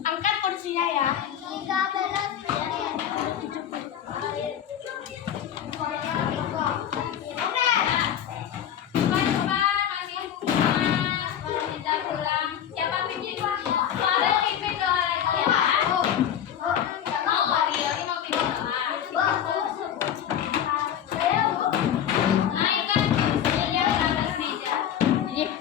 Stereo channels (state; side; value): quieter; right; 9.8 dB